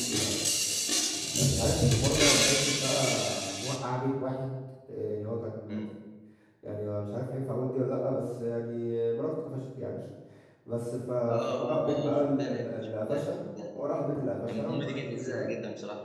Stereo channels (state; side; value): identical; both; correlation 1.00